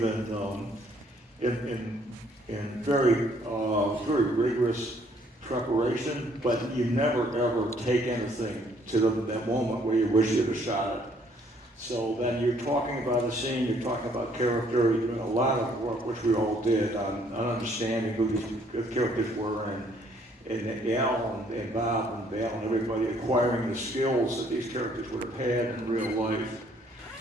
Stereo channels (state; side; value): normal; both; correlation 0.64